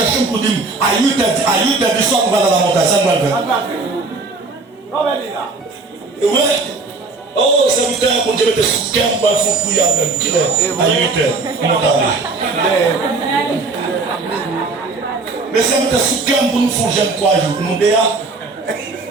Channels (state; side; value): quieter; left; 3.7 dB